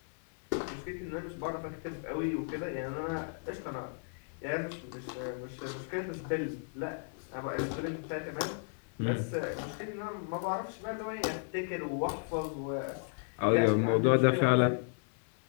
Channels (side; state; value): right; silent; digital silence